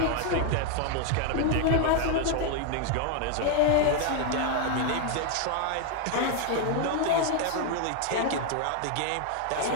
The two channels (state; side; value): different; both; correlation 0.01